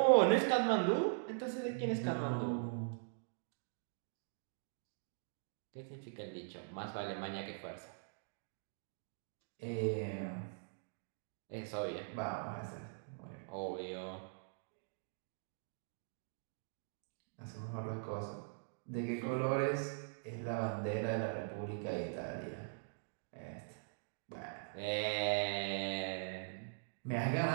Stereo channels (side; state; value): left; silent; digital silence